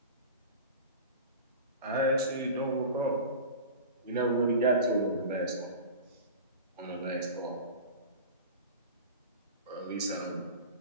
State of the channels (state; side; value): inverted; both; correlation -0.33